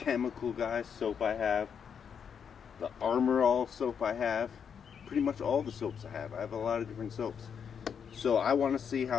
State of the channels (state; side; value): quieter; right; 7.3 dB